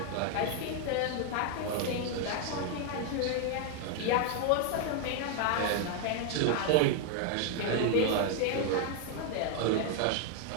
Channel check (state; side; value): different; both; correlation 0.00